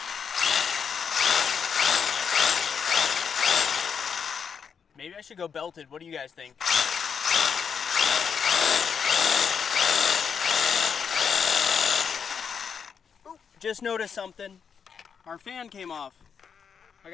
Maybe I should go belted. What do you guys think? Ooh, just noticed something. Our fan came off. I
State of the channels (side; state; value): right; quieter; 6.7 dB